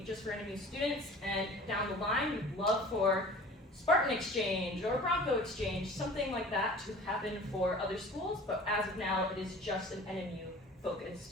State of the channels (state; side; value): normal; both; correlation 0.43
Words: just for NMU students, and down the line, we'd love for Spartan Exchange or Bronco Exchange, something like that to happen for other schools, but as of now, it is just an